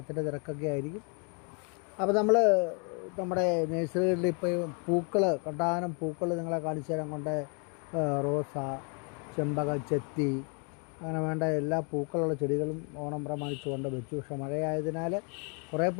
തിരക്കൊക്കെ ആയിരിക്കും. അപ്പോൾ നമ്മുടെ നേഴ്സറികളിൽ ഇപ്പോൾ പൂക്കൾ, കണ്ടാനം പൂക്കൾ നിങ്ങളെ കാണിച്ചു തരാൻ കൊണ്ട് റോസ, ചെമ്പകം, ചെത്തി, അങ്ങനെ വേണ്ട എല്ലാ പൂക്കളുള്ള ചെടികളും ഓണം പ്രമാണിച്ചുകൊണ്ട് വെച്ചു. പക്ഷേ മഴയായതിനാൽ കുറേ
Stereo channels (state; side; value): quieter; right; 37.0 dB